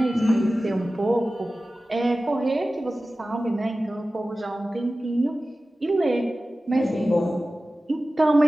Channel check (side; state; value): both; normal; correlation 0.96